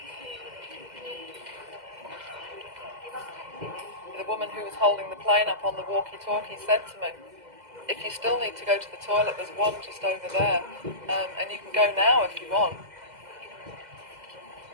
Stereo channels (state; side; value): late; left; 2.0 ms